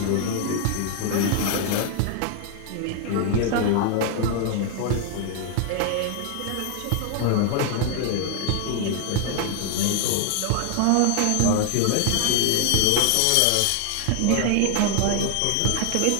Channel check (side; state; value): both; different; correlation 0.00